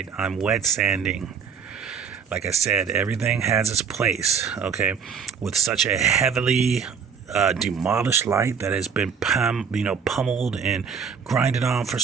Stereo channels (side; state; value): left; quieter; 6.4 dB